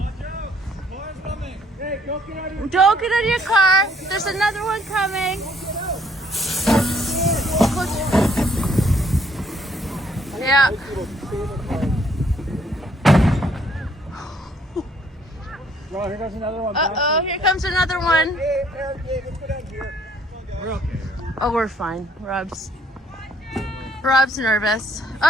out! Car's coming. Hey, don't get out of your Don't get out of your car. There's another one coming. Yeah. Well, here goes another one. Uh-oh, here comes another one. Hey, let's go down here. We're okay. Oh, we're fine. Rob's nervous.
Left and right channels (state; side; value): normal; both; correlation 0.64